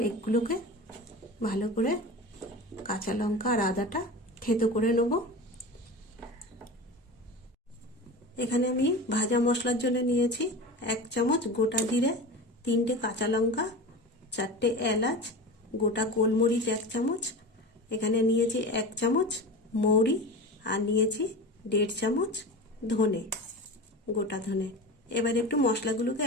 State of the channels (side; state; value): both; normal; correlation 0.30